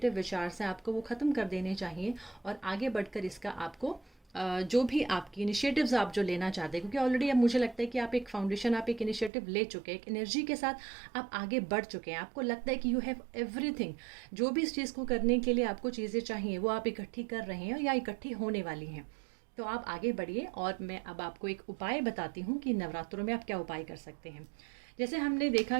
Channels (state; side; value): drops out; left; at 9.3 s